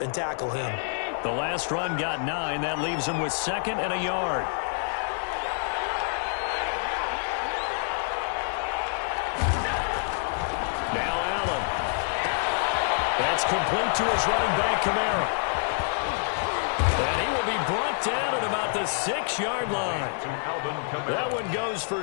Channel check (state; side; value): silent; right; 60 dB below the other